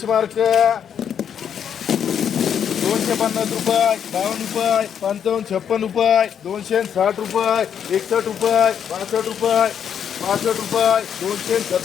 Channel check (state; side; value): quieter; right; 8.3 dB